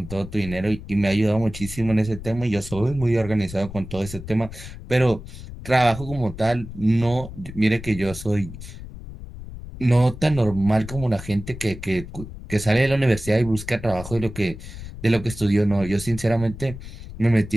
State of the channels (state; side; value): noise; left; rumble, 12 dB below the sound